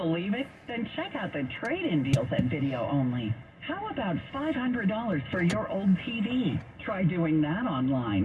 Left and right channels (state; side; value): identical; both; correlation 1.00